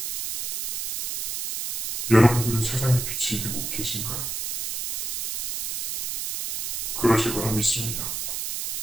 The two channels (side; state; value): right; noise; hiss, 3 dB below the sound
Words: 여러분들은 세상의 빛이 되고 계신가요? 그러실 거라 믿습니다.